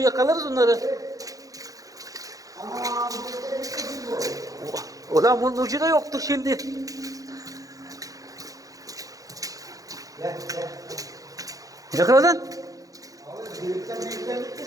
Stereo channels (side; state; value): left; late; 0.17 ms